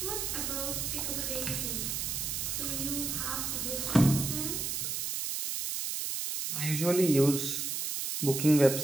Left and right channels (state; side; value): noise; right; hiss, 2 dB below the sound